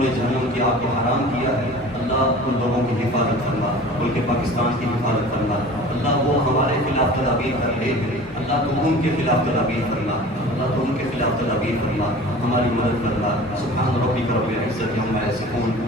جہنم کی آگ کو حرام کیا ہے. اللہ ان لوگوں کی حفاظت فرما، ملک پاکستان کی حفاظت فرما. اللہ وہ ہمارے خلاف تدابیر کر رہے ہیں، اللہ تو ان کے خلاف تدابیر فرما. اللہ تو ان کے خلاف تدابیر فرما، ہماری مدد فرما. سبحان ربک رب العزت عما یصفون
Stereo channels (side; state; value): both; normal; correlation 0.41